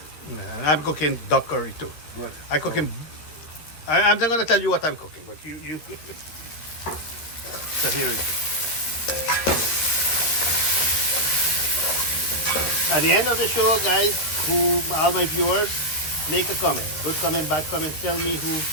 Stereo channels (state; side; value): late; right; 13 ms